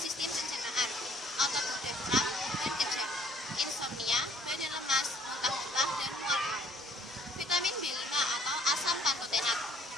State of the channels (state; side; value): normal; both; correlation 0.58